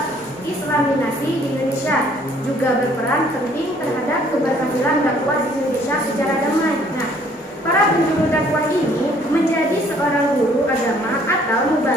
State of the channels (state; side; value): normal; both; correlation 0.60